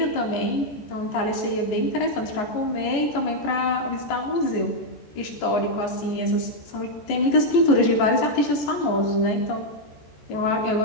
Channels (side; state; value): right; late; 14 ms